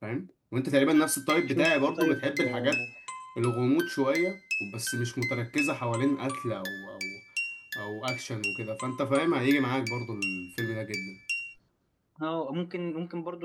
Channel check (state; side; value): identical; both; correlation 1.00